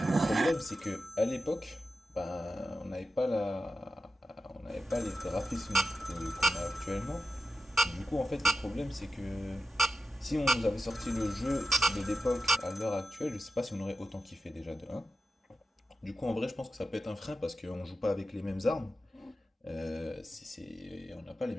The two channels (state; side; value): normal; both; correlation 0.90